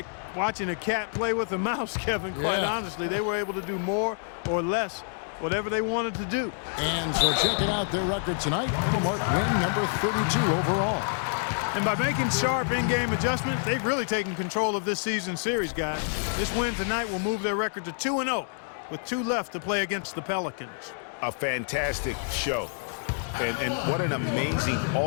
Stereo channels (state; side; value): silent; right; digital silence